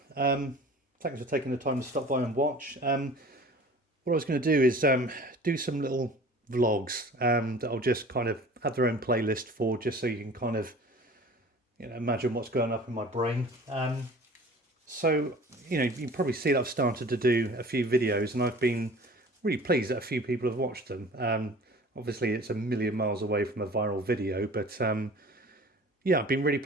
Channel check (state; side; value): normal; both; correlation 0.44